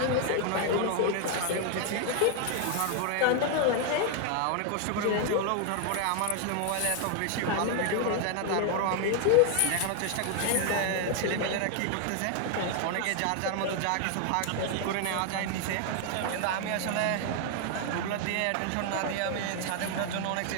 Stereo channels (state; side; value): different; both; correlation 0.00